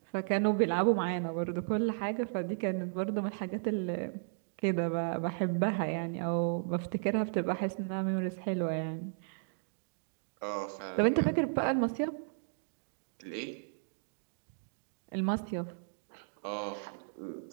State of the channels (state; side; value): silent; left; digital silence